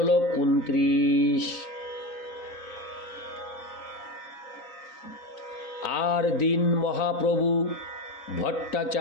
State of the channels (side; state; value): right; late; 3.9 ms